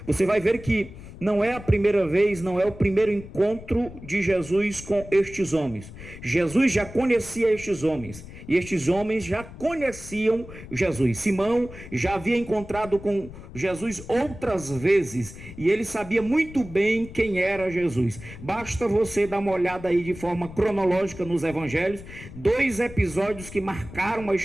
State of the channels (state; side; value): noise; left; rumble, 15 dB below the sound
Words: você vai ver que não é a primeira vez, não é o primeiro encontro de Jesus com estes homens. Jesus já conhecia estes homens, e estes homens já conheciam Jesus. Simão já havia encontrado com Jesus outras vezes, e ele sabia muito bem quem era Jesus. Basta você dar uma olhada aí de forma cronológica nos evangelhos, 2 episódios que marcaram a